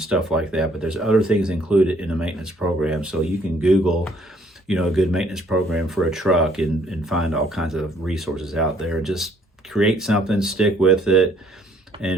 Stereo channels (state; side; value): normal; both; correlation 0.63